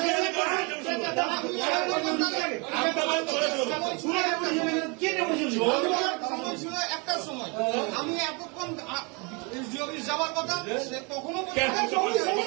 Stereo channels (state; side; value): quieter; left; 31.1 dB